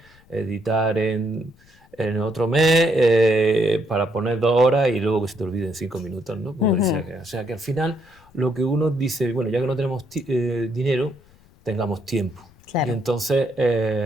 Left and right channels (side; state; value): left; noise; rumble, 28 dB below the sound